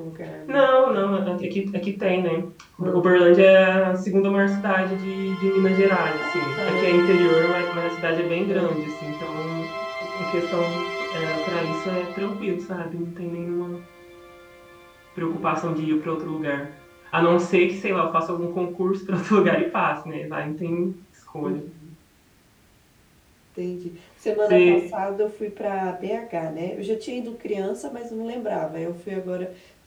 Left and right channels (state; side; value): identical; both; correlation 1.00